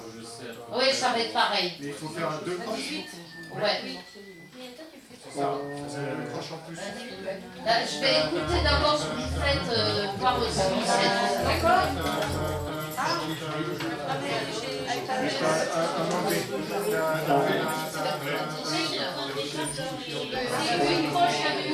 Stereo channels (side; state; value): both; identical; correlation 1.00